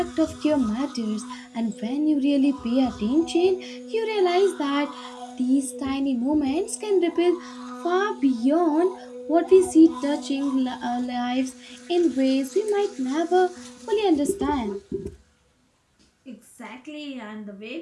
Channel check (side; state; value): both; identical; correlation 1.00